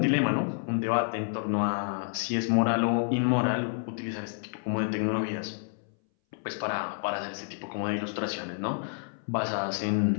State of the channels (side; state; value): right; silent; 58 dB below the other